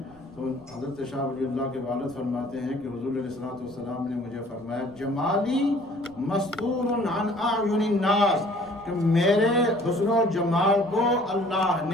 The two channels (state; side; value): noise; right; rumble, 26 dB below the sound